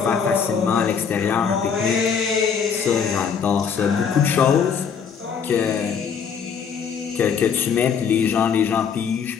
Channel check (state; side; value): quieter; right; 6.8 dB